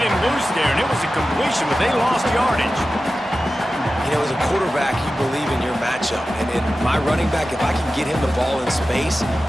loose there, and it was a completion, but they lost yardage. You know, as a quarterback, you believe in your matchup. And in my running back, if I can get him the ball in space,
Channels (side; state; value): both; normal; correlation 0.94